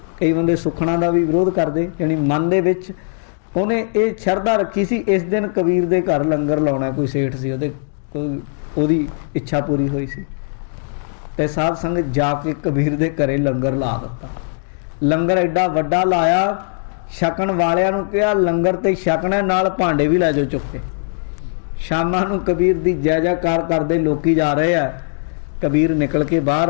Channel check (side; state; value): right; silent; digital silence